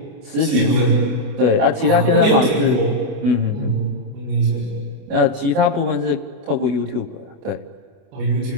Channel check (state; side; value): late; left; 29 ms